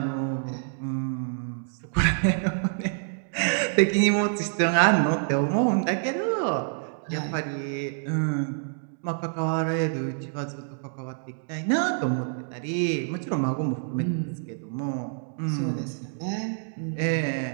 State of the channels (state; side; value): silent; left; digital silence